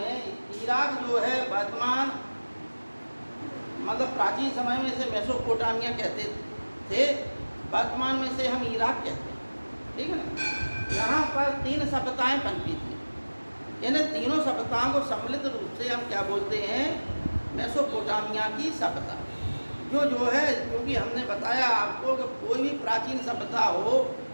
इराक जो है वर्तमान मतलब प्राचीन समय में इसे मेसोपोटामिया कहते थे, वर्तमान में से हम इराक कहते हैं, ठीक है ना। यहाँ पर 3 सभ्यताएं पनपी थी, यानी तीनों सभ्यताओं को सम्मिलित रूप से हम क्या बोलते हैं? मेसोपोटामिया की सभ्यता। जो है, क्योंकि हमने बताया आपको कि कोई भी प्राचीन सभ्यता हो,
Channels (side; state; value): both; inverted; correlation -1.00